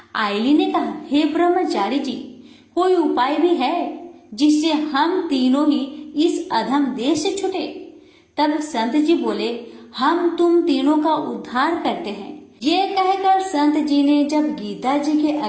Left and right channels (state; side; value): identical; both; correlation 1.00